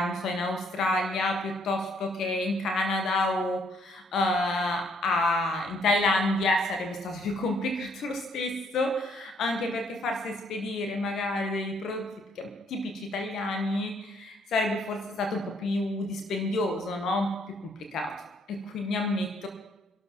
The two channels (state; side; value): normal; both; correlation 0.67